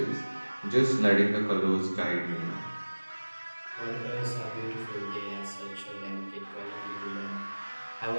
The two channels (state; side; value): inverted; both; correlation -1.00